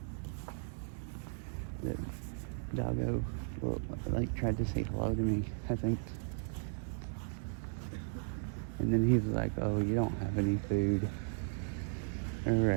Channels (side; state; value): left; silent; digital silence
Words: The doggo tried to say hello to me, I think. And then he was like, oh, you don't have any food. All